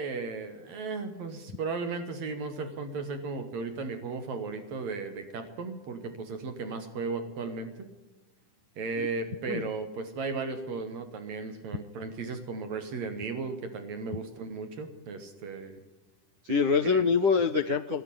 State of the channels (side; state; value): left; late; 10 ms